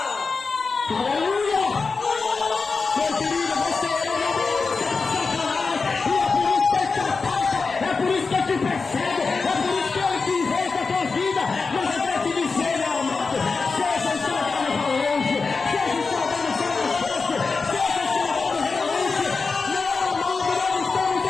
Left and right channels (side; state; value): right; quieter; 4.4 dB